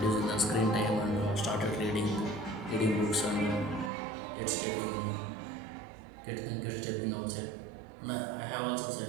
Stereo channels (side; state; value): left; drops out; at 3.9 s